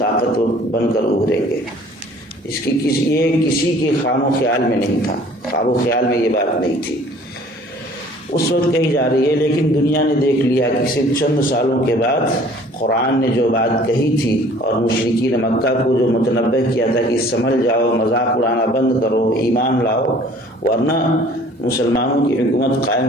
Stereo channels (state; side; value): normal; both; correlation 0.52